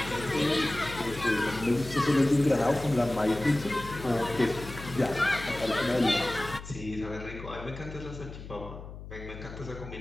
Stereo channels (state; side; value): noise; left; hum, 12 dB below the sound